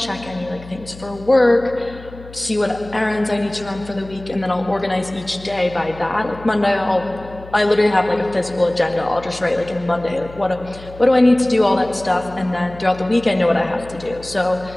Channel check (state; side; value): noise; left; hum, 18 dB below the sound